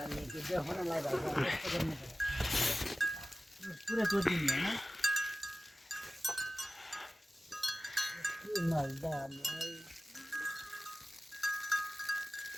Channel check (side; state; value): both; normal; correlation 0.96